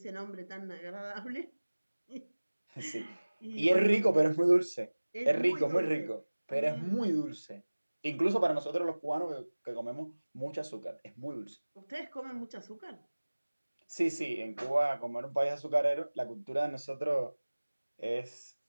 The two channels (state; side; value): inverted; both; correlation -1.00